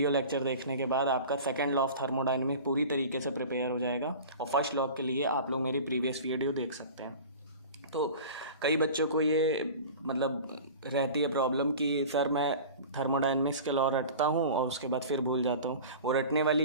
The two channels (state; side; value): inverted; both; correlation -0.37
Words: लेक्चर देखने के बाद आपका सेकंड लॉ ऑफ थर्मोडायनेमिक्स पूरी तरीके से प्रिपेयर हो जाएगा और फर्स्ट लॉ के लिए आप लोग मेरी प्रीवियस वीडियो देख सकते हैं। तो कई बच्चों को ये रहती है प्रॉब्लम कि सर मैं थर्मोडायनेमिक्स के लॉ रटता हूँ और उसके बाद फिर भूल जाता हूँ। वो रटने